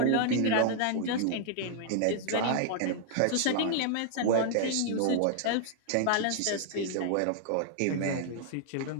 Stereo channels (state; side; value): different; both; correlation -0.01